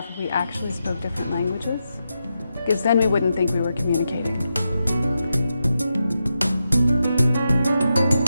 if we actually spoke different languages, because then we wouldn't think we were communicating.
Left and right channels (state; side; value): inverted; both; correlation -0.87